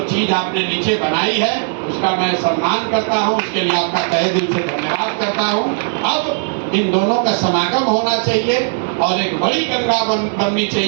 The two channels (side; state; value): left; silent; digital silence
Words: चीज आपने नीचे बनाई है, उसका मैं सम्मान करता हूं, उसके लिए आपका तहे दिल से धन्यवाद करता हूं। अब इन दोनों का समागम होना चाहिए और एक बड़ी गंगा बननी